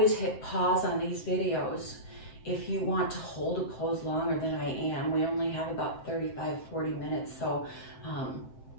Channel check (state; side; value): late; right; 7.8 ms